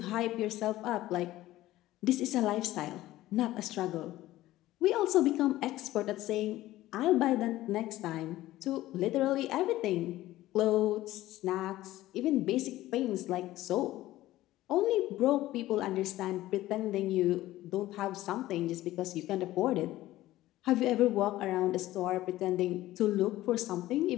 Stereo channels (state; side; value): quieter; right; 15.8 dB